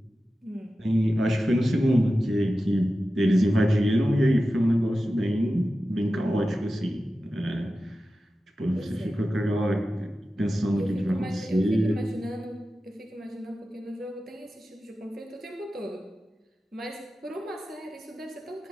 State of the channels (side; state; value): both; normal; correlation 0.93